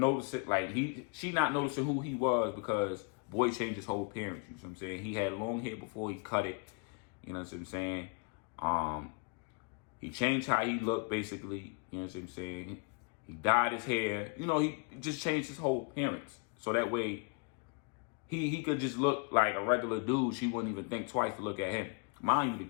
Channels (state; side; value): quieter; right; 34.2 dB